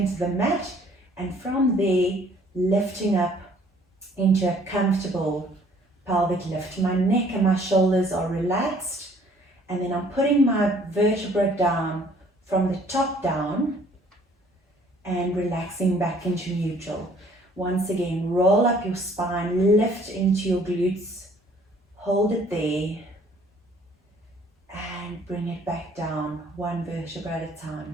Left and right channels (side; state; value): both; normal; correlation 0.58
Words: the mat, and from there, lifting up into a comfortable pelvic lift. My neck and my shoulders are relaxed, and then I'm putting my vertebra down from the top down and relaxing back into neutral. Once again, roll up your spine, lift into your glutes, hold it there, and bring it back down, 1 vertebra at a